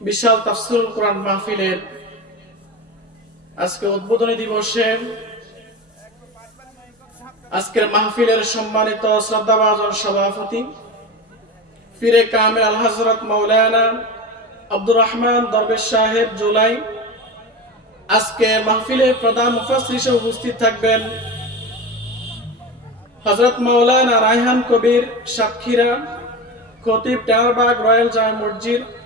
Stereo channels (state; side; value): normal; both; correlation 0.26